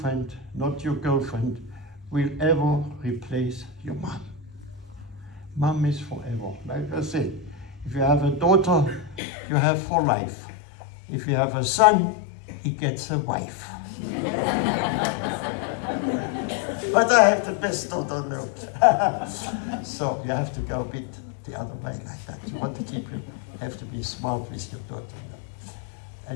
not your girlfriend will ever replace your mom. Mom is forever. Like I said, if you have a daughter, you have for life. If you have a son, he gets a wife. But I have the best daughter on earth. So you have to go a bit the other way like that. You want to keep you have to be smart with your daughter.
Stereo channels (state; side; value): drops out; right; at 9.2 s